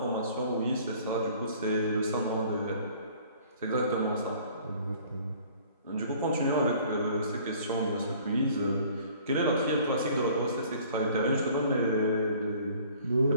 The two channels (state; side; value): inverted; both; correlation -0.53